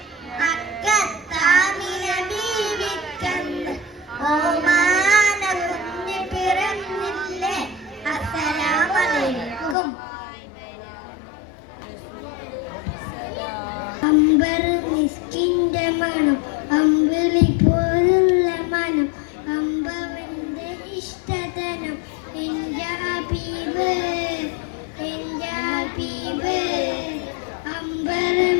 മക്കത്താമിന ബീവിക്കന്ന് ഓമാന കുഞ്ഞ് പിറന്നില്ലേ. അസ്സലാമു അലൈക്കും. അമ്പർ മിസ്കിന്റെ മണം, അമ്പിളി പോലുള്ള മനം, അമ്പവന്റെ ഇഷ്ടധനം, എന്റെ ഹബീബ് എന്റെ ഹബീബ്. അമ്പർ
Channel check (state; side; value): drops out; right; at 9.8 s